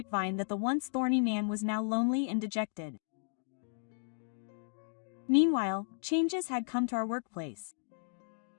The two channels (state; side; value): silent; right; digital silence